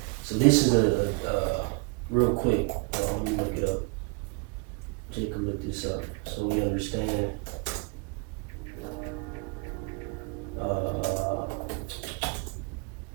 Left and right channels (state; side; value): quieter; left; 31.9 dB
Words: So this is a real quick, let me look it up. Jacob look this up so we understand.